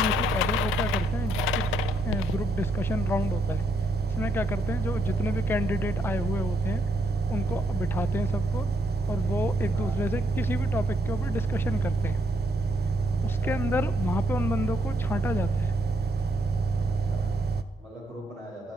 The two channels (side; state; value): both; normal; correlation 0.75